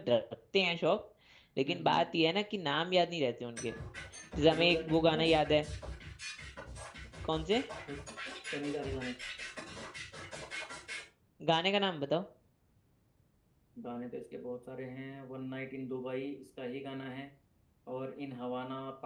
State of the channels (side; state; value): both; identical; correlation 1.00